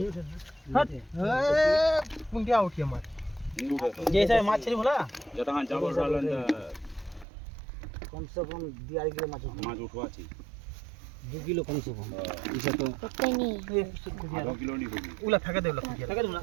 হট এ পুঙ্কিয়া উঠি আমার जैसे माछ छली भला जटा हां जाबर सालन कम से कम 2 किलो माछ माछ उठवाची 2 किलो कम से कम इसे तो पक्का नहीं आधा किलो नहीं होगी উলা ফেকে দে উলা ফেকে ফেকে দে উলা।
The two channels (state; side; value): drops out; left; at 7.2 s